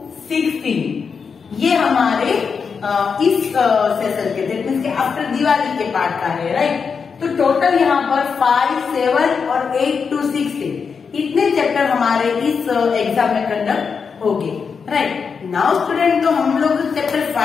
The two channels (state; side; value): quieter; right; 5.8 dB